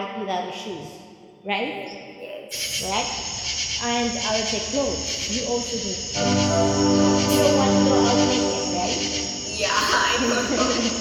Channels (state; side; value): identical; both; correlation 1.00